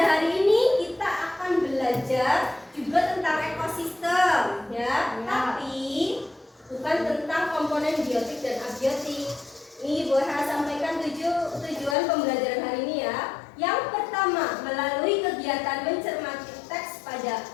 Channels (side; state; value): right; drops out; at 12.0 s